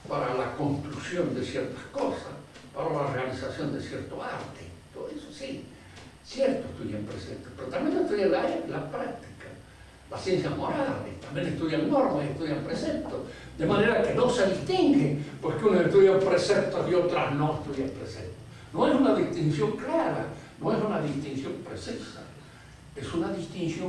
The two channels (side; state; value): both; identical; correlation 1.00